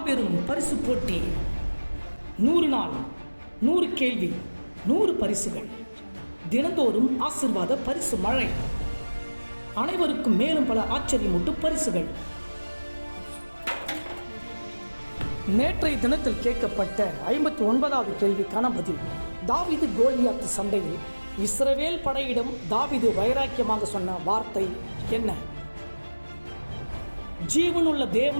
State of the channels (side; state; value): both; inverted; correlation -1.00